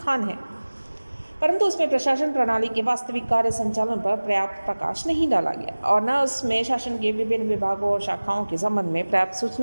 है, परंतु उसमें प्रशासन प्रणाली के वास्तविक कार्य संचालन पर पर्याप्त प्रकाश नहीं डाला गया और न उसमें शासन के विभिन्न विभागों और शाखाओं के संबंध में पर्याप्त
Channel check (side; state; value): both; inverted; correlation -1.00